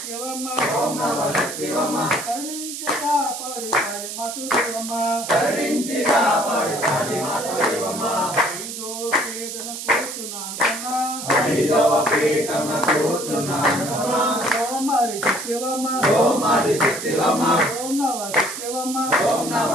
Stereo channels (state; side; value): noise; right; hiss, 8 dB below the sound